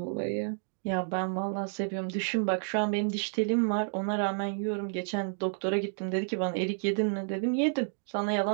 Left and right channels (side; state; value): left; silent; digital silence